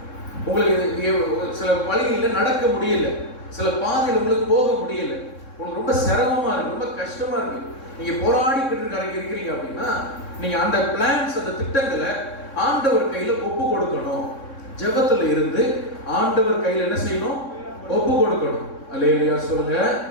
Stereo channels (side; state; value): right; late; 3.6 ms